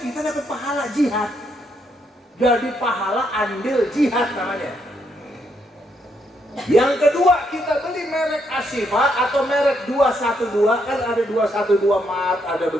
dapat pahala jihad. Jadi pahala andil jihad namanya. Yang kedua, kita beli merek Ashifa atau merek 212, kan ada 212 Mart, ada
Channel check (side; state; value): both; normal; correlation 0.76